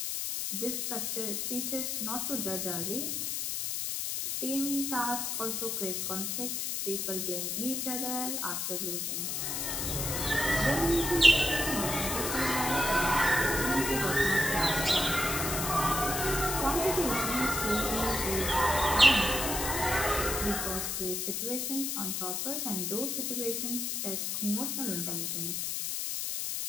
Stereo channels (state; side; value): noise; left; hiss, 1 dB below the sound